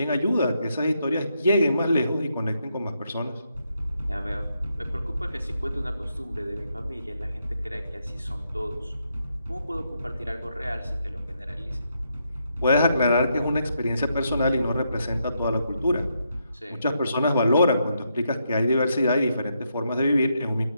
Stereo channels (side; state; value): both; inverted; correlation -0.80